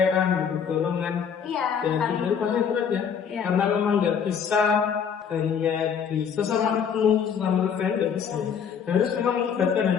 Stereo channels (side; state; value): right; quieter; 7.2 dB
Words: butuh dorongan. Iya. Dan itu pasti berat ya. Karena memang nggak bisa hanya di sesama rekan nggak bisa. Harus memang melibatkan dan